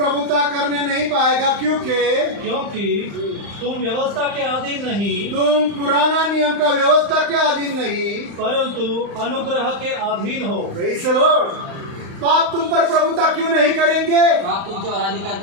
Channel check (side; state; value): left; late; 35 ms